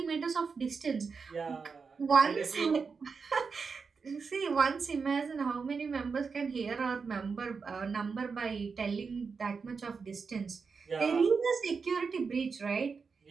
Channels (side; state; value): left; quieter; 5.2 dB